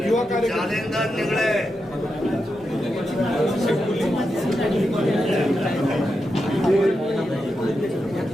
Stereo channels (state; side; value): normal; both; correlation 0.87